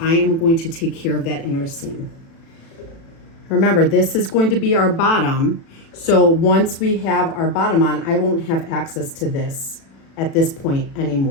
am going to take care of that inner seam. Remember, this is going to be our bottom. So once we have our bottom on, I won't have access to this at this point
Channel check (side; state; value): right; late; 36 ms